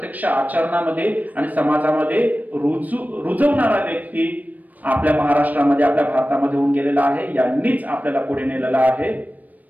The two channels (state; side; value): late; left; 0.079 ms